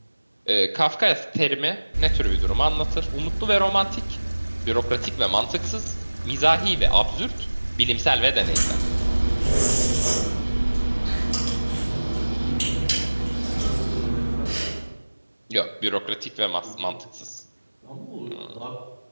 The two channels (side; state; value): both; inverted; correlation -1.00